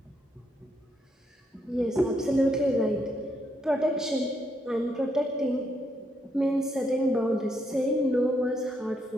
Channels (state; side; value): normal; both; correlation 0.76